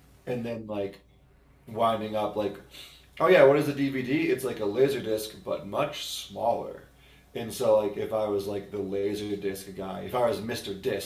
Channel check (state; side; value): identical; both; correlation 1.00